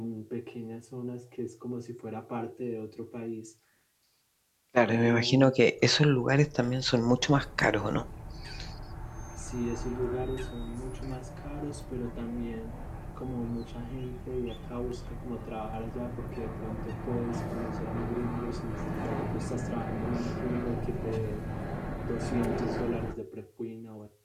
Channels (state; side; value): identical; both; correlation 1.00